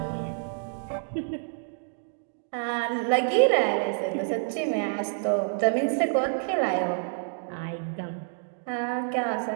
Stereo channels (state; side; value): silent; left; digital silence